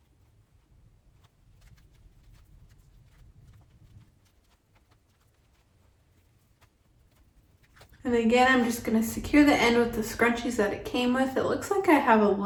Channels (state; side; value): identical; both; correlation 1.00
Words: And again, I'm just gonna secure the end with the scrunchies that it came with. It looks like I have a